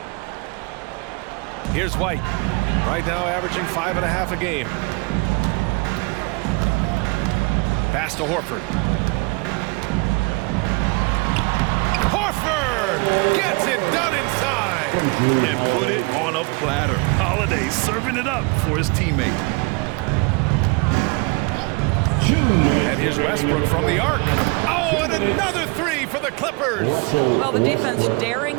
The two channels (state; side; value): quieter; left; 29.4 dB